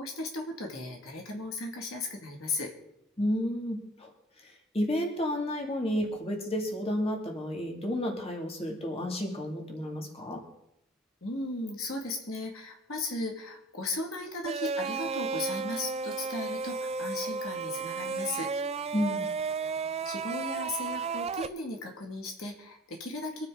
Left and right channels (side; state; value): both; normal; correlation 0.49